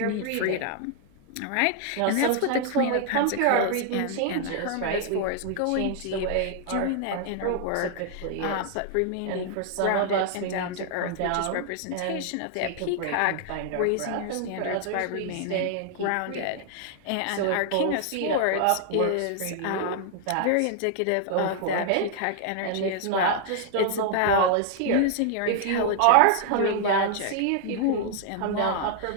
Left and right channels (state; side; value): different; both; correlation 0.00